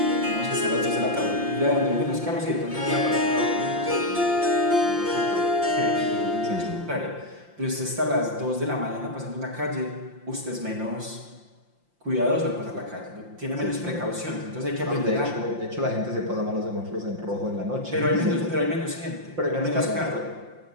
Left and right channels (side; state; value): left; late; 5.7 ms